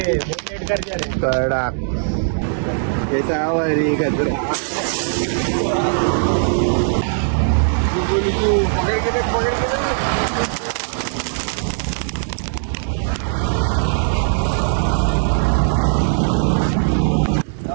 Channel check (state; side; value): silent; left; digital silence